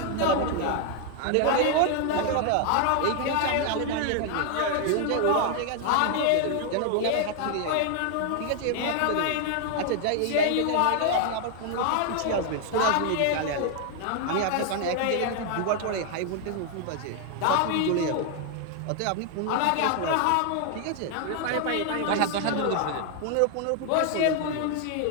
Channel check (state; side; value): different; both; correlation 0.00